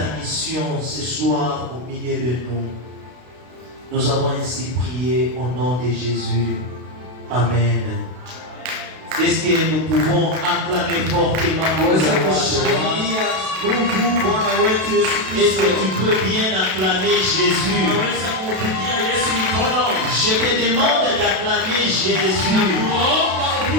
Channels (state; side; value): late; left; 32 ms